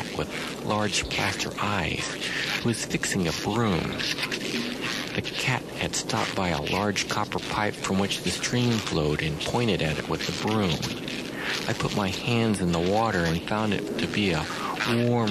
with large plaster eyes who was fixing a broom. The cat had stopped by a large copper pipe from which the stream flowed and pointed at it with the broom. I put my hands in the water and found it to be a warm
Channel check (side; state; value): both; identical; correlation 1.00